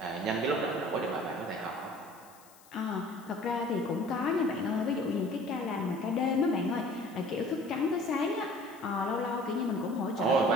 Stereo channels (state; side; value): noise; left; hiss, 25 dB below the sound